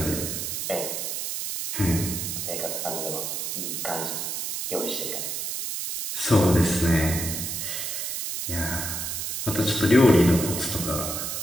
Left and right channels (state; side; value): noise; right; hiss, 3 dB below the sound